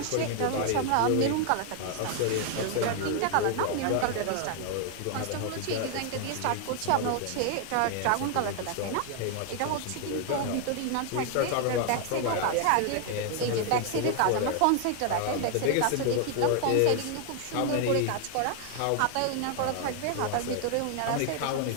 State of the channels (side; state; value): both; different; correlation 0.00